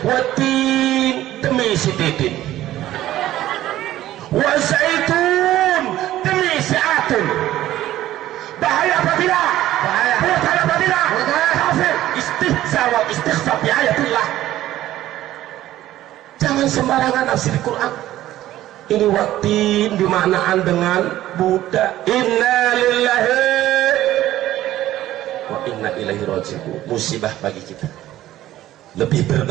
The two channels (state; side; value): quieter; left; 14.1 dB